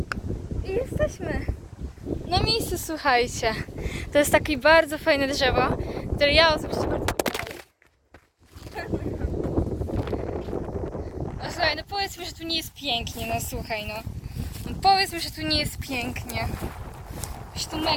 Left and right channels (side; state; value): both; identical; correlation 1.00